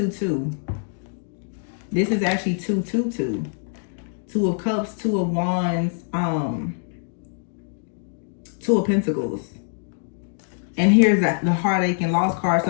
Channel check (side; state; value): right; silent; 63 dB below the other